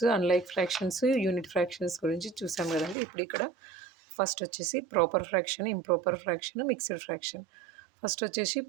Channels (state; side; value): drops out; left; at 3.0 s